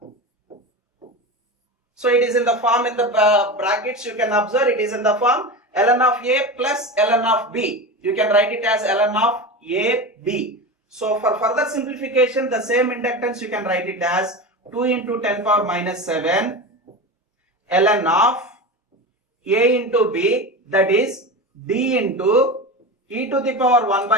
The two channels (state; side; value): normal; both; correlation 0.25